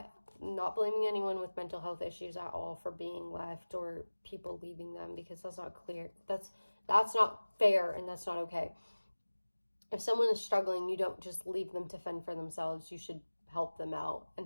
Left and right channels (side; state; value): both; inverted; correlation -1.00